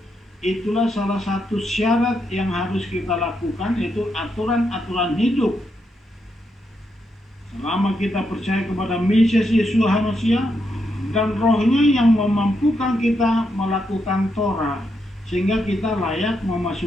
itulah salah satu syarat yang harus kita lakukan, yaitu aturan-aturan hidup. Selama kita percaya kepada Mesias Yeshua Mashiach dan rohnya yang memampukan kita melakukan Torah, sehingga kita layak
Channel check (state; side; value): normal; both; correlation 0.81